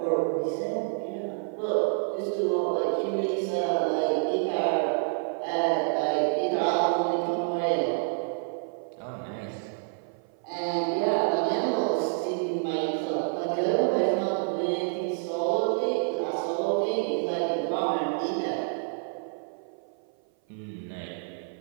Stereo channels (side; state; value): left; silent; 56 dB below the other